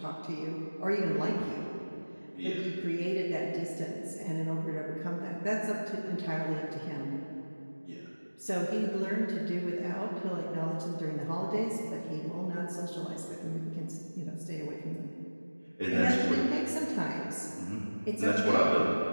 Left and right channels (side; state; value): both; inverted; correlation -1.00